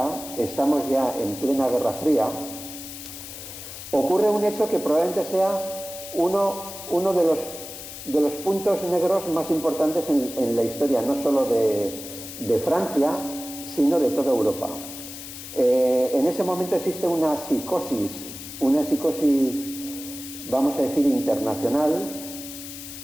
estamos ya en plena Guerra Fría, ocurre un hecho que probablemente sea uno de los puntos negros más importantes en la historia, no solo de Francia, sino de toda Europa. En ese momento existe una psicosis, vamos a decir, internacional.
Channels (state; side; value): noise; left; hiss, 11 dB below the sound